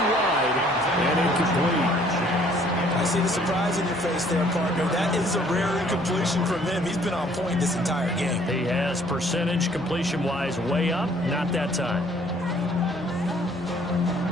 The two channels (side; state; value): left; noise; hum, 26 dB below the sound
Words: wide and incomplete. I see the surprise in your face there, partner. That is a rare incompletion from him. He's been on point this entire game. He has percentage completion-wise way up. Not that time.